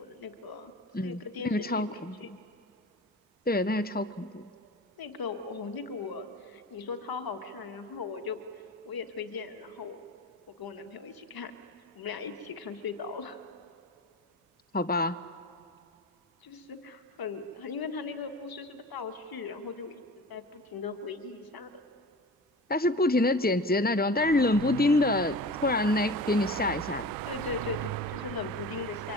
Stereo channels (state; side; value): normal; both; correlation 0.36